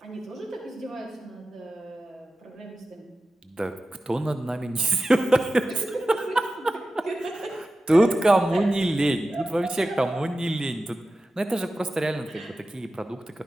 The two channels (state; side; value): normal; both; correlation 0.94